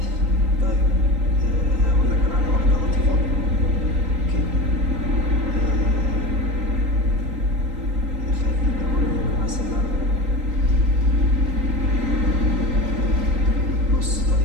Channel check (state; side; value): late; left; 3.8 ms